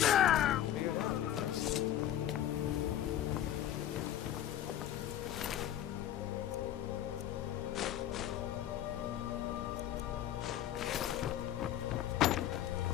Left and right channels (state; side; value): quieter; right; 11.7 dB